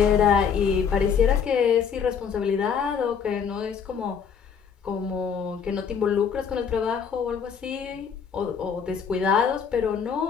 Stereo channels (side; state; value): right; quieter; 6.9 dB